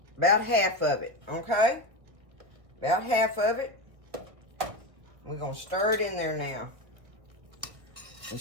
about half of it, okay? About half of it. We're going to stir it in there now. And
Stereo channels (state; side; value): late; left; 1.7 ms